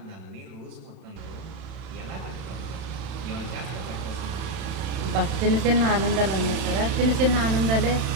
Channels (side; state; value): left; late; 31 ms